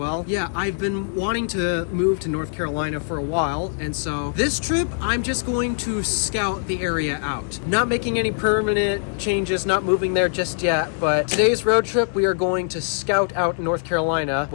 Yeah, I've been wanting to move to North Carolina for a while, and so this trip, I'm just going to scout the area out. Not making any permanent changes, not moving there just yet, but today's road trip, we are going to scout out North Carolina.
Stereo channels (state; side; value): silent; right; 64 dB below the other